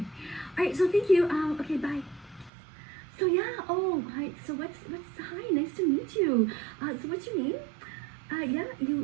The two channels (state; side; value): drops out; left; at 2.5 s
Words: All right, so thank you. Okay, bye. So yeah, oh, hi. So hi, nice to meet you. So what's your name? Yeah,